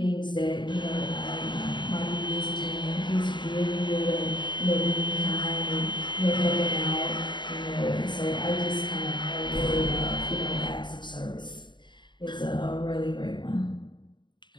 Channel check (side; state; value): right; late; 0.22 ms